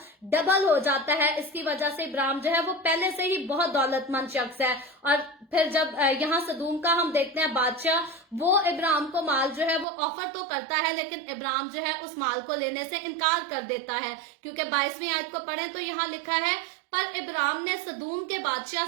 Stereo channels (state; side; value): drops out; left; at 9.9 s